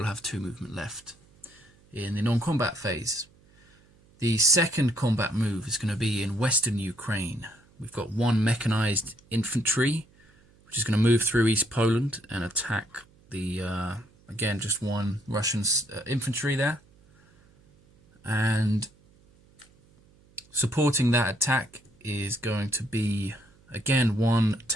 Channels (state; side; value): noise; right; hum, 30 dB below the sound